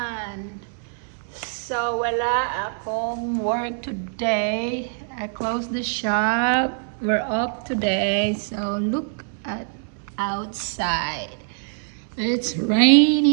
So, wala akong work today. I closed the shop. We're up today. So, look at outside. It's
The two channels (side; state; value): left; silent; 63 dB below the other